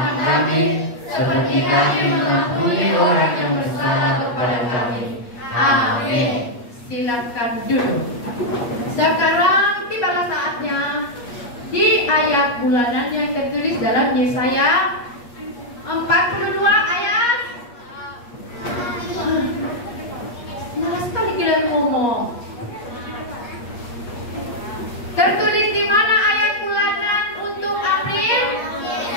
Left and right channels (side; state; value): right; late; 8.4 ms